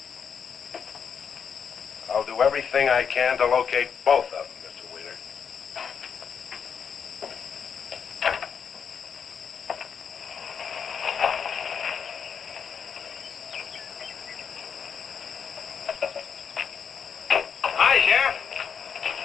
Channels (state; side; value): quieter; right; 7.0 dB